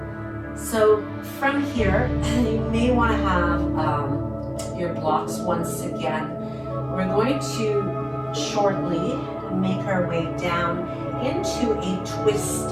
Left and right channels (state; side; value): identical; both; correlation 1.00